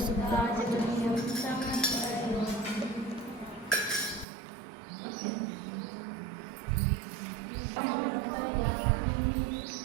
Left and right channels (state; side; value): drops out; left; at 4.2 s